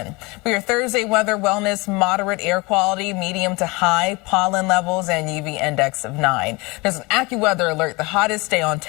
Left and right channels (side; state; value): right; quieter; 25.4 dB